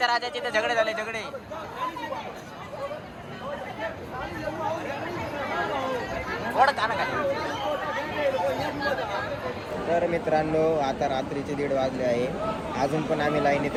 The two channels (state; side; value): identical; both; correlation 1.00